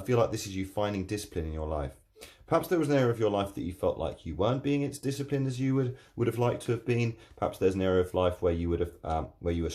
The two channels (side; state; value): both; identical; correlation 1.00